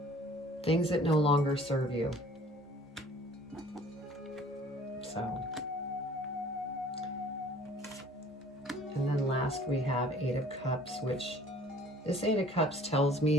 Things that no longer serve you. So. And then last we have Eight of Cups, which this Eight of Cups tells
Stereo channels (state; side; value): normal; both; correlation 0.52